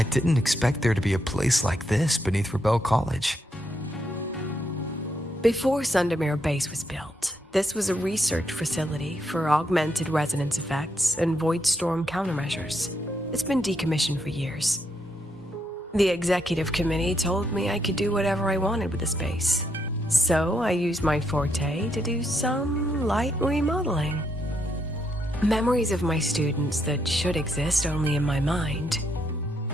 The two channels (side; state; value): both; normal; correlation 0.78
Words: didn't expect there to be a place like this beneath Rebel College. Before Sundermere Base was built, this was a research facility for augmented resonance effects and void storm countermeasures. It's been decommissioned for years. The executive committee told me I could do whatever I wanted with the space. So I used my forte to do some light remodeling. Memories of my students that should exist only in my mind.